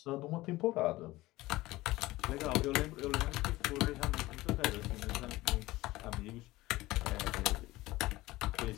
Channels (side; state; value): right; quieter; 18.6 dB